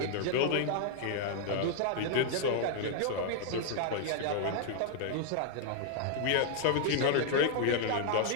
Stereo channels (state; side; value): different; both; correlation 0.00